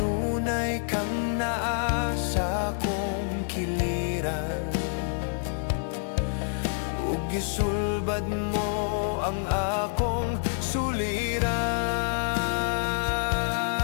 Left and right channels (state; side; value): silent; right; digital silence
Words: kang naa sa akong kiliran, ug gisulbad mo ang akong suliran.